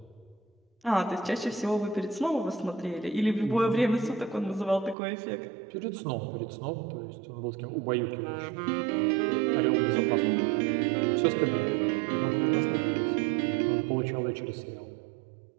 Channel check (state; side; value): drops out; left; at 5.0 s